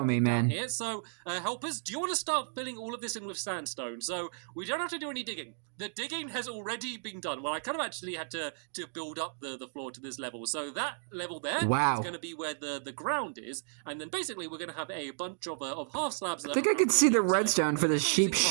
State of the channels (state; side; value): silent; left; digital silence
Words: me, man. Here. So helpers, do you want to start filling all of this in with sandstone? So we don't have to do any digging. The digging has already been done. Well, I kind of actually had to build build up the floor to this level. So that level there is going to be where the ground is, and then basically we're going to have a bunch of half slabs. I think I could see the redstone for the sheep